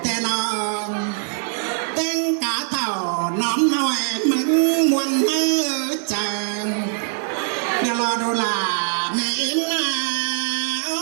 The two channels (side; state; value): left; silent; 57 dB below the other